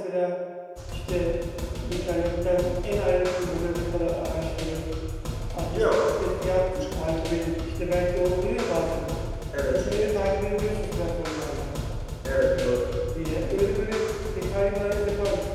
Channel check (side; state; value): both; identical; correlation 1.00